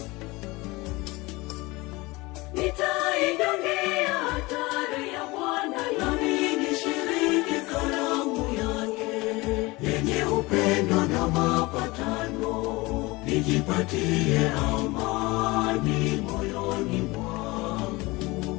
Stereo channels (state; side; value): quieter; right; 22.6 dB